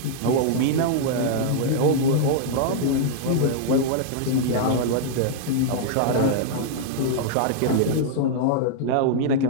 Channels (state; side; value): different; both; correlation -0.01